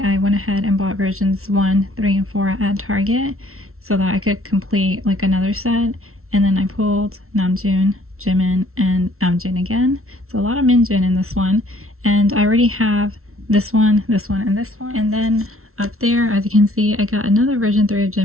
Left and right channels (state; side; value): late; left; 0.63 ms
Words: went ahead and bought versions 1, 3, and 4 at Target so that I could complete like another set. And then I pulled Namjoon, Jimin, and Namjoon again. So a lot of Minjoon in this one. And I already have this one, and this one. And then up there, as you can see, I got another version 3 of